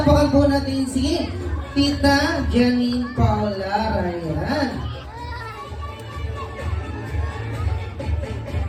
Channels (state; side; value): identical; both; correlation 1.00